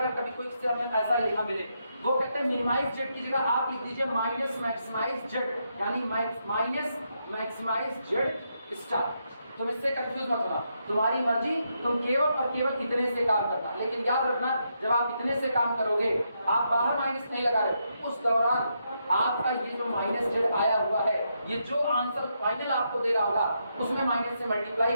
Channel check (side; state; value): both; inverted; correlation -0.80